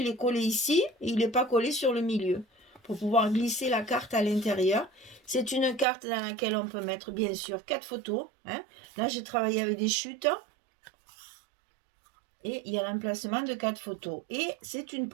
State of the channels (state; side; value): drops out; left; at 5.9 s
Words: est collé ici et il n'est pas collé sur le milieu pour pouvoir glisser la carte à l'intérieur. C'est une carte dans laquelle on peut mettre bien sûr 4 photos. Hein. Là, j'ai travaillé avec des chutes. Et il y a l'emplacement de 4 photos. Et c'est une